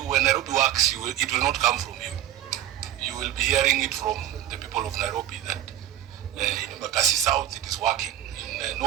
Nairobi works, it will not come from you. You will be hearing it from the people of Nairobi that in Bakassi South it is working, in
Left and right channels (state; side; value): quieter; left; 12.0 dB